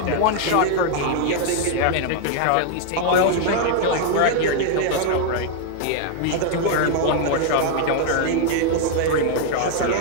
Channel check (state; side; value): different; both; correlation 0.00